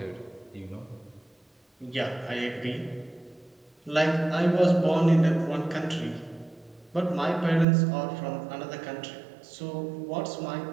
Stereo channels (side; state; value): left; drops out; at 7.7 s